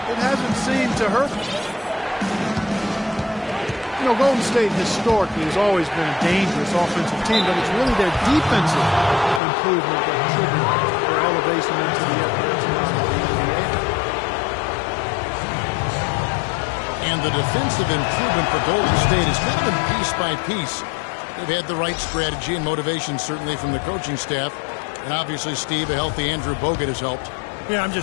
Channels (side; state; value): right; drops out; at 9.4 s